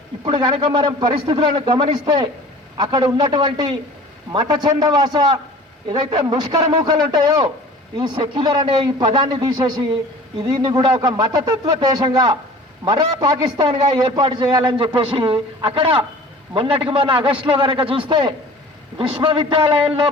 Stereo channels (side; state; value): both; normal; correlation 0.44